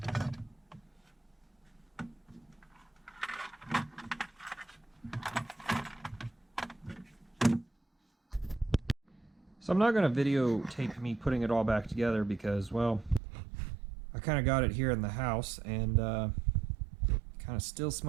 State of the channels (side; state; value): left; drops out; at 13.2 s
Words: So I'm not going to videotape me putting it all back together because, well, I kind of got it here in the house and kind of still